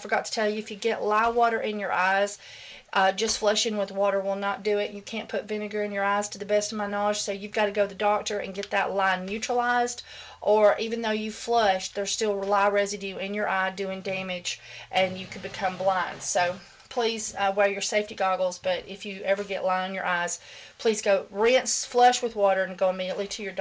to tell you, if you get lye water in your eyes, just flushing with water will not do it. You can't put vinegar in your eyes, to the best of my knowledge, so you've got to go to the doctor and get that lye neutralized, or even though you flushed, there's still lye residue in your eye doing damage, and you could become blind. So please wear your safety goggles, but if you ever get lye in your eyes, please go rinse, flush with water, and go immediately to your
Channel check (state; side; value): identical; both; correlation 1.00